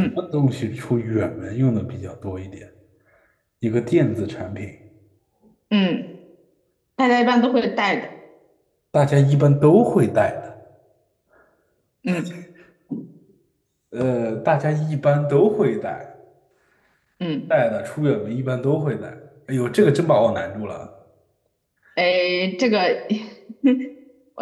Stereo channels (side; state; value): both; identical; correlation 1.00